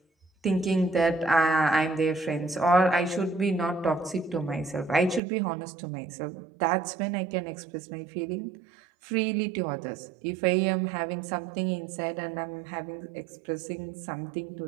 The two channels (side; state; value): left; drops out; at 5.2 s